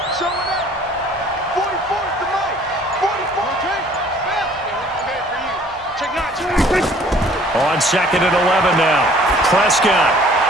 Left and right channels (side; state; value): both; normal; correlation 0.55